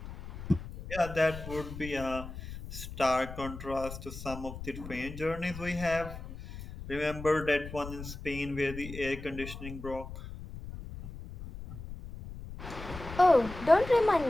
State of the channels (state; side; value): noise; left; rumble, 11 dB below the sound